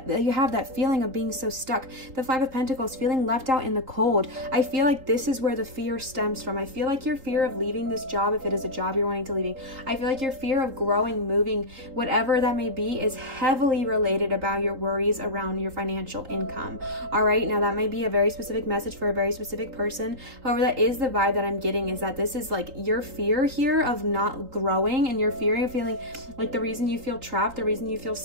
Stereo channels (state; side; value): late; left; 3.7 ms